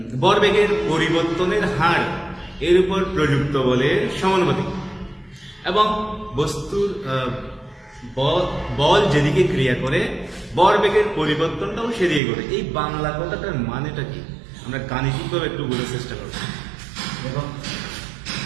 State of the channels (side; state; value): left; drops out; at 12.2 s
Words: ভরবেগের পরিবর্তনের হার এর উপর প্রযুক্ত বলের সমানুপাতিক এবং বস্তুর বল যেদিকে ক্রিয়া করে ভরবেগের পরিবর্তনটাও সেদিকে করে। এই বাংলা কথাটার মানেটা কি আমরা গাণিতিকভাবে একটু বোঝার চেষ্টা করব। দেখো